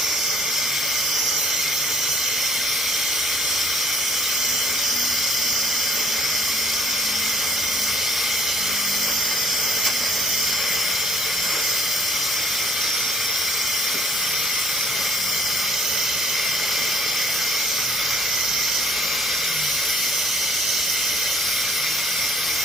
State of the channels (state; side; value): normal; both; correlation 0.62